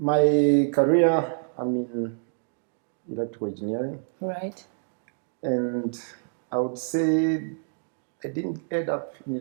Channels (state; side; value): silent; left; digital silence